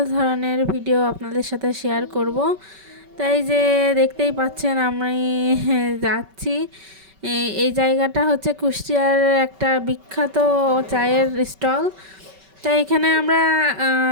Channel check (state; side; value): late; left; 5.2 ms